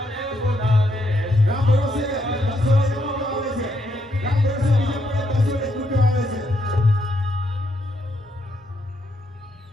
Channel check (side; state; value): both; normal; correlation 0.77